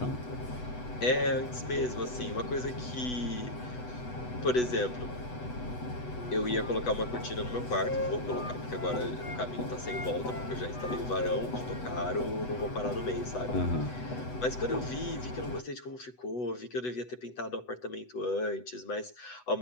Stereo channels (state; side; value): late; right; 8.0 ms